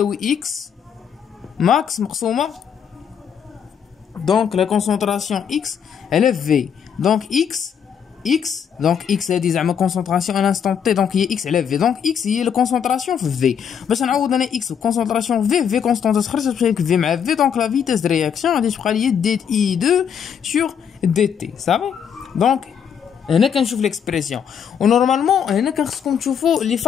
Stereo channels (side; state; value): right; quieter; 7.8 dB